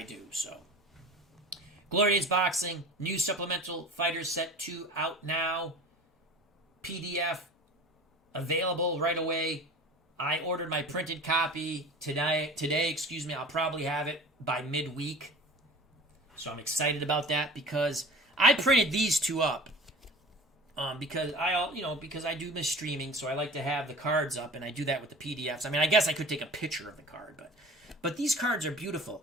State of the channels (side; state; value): both; normal; correlation 0.40